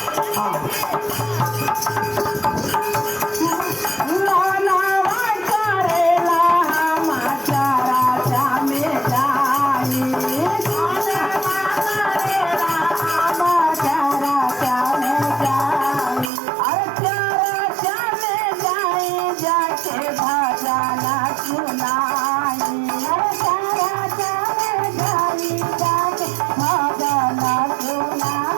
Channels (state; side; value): drops out; left; at 16.3 s